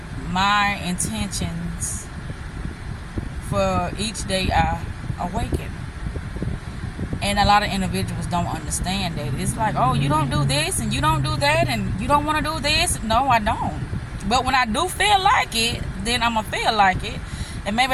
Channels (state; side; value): identical; both; correlation 1.00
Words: my intentions for each day I awaken. And a lot of individuals don't understand that. It's like, oh, you don't do this and you don't do that and you don't want to do this. No, I don't. But when I do feel like it, then I'm going to feel like it. And